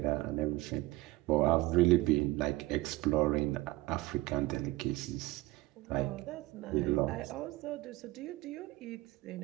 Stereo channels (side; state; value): left; quieter; 19.9 dB